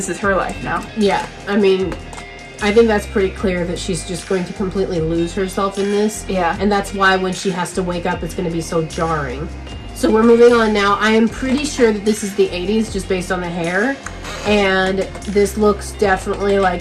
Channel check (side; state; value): both; identical; correlation 1.00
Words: is her life now. Yeah. I mean, I think that's pretty clear that she's just going to completely lose herself in this. Yeah. And that's why when she has to wake up, it's going to be so jarring. So we're moving on now. I am pretty sure that this is the 80s just based on the hair. And this looks definitely